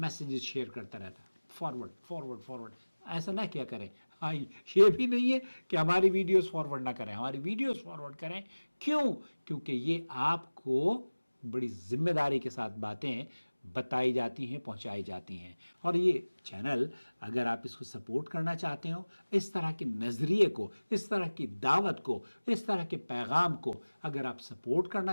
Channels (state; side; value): inverted; both; correlation -1.00